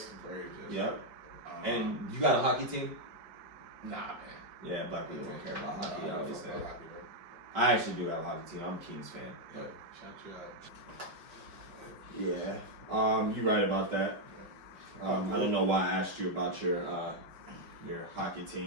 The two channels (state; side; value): late; left; 5.2 ms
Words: Braves. Yes. Yep. And you got a hockey team? Nah, man. Yeah, black people don't care about hockey, Nah, obviously. fuck hockey, bro. I actually do have a hockey team. I'm a Kings fan. Yeah, shout you out. Yeah. You're right about that. I don't know why I asked you about your hockey